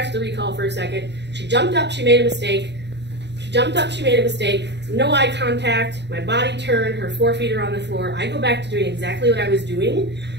the recall for a second. She jumped up, she made a mistake. She jumped up, she made a mistake. No eye contact, my body turned, her 4 feet are on the floor. I go back to doing exactly what I was doing,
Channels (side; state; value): left; late; 0.50 ms